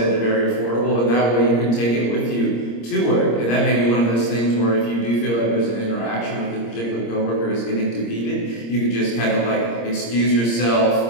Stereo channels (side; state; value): right; late; 26 ms